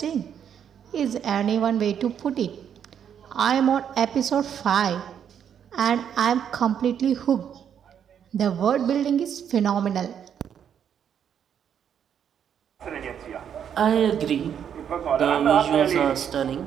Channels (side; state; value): left; quieter; 8.6 dB